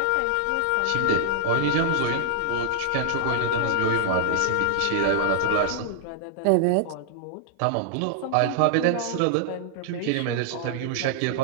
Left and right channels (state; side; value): different; both; correlation -0.01